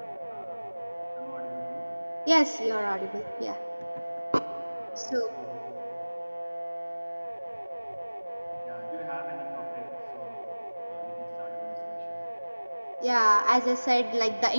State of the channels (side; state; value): both; inverted; correlation -1.00